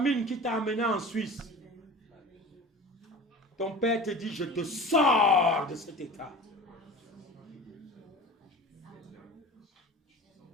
qui t'a amené en Suisse. Ton père te dit, je te sors de cet état.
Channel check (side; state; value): both; normal; correlation 0.37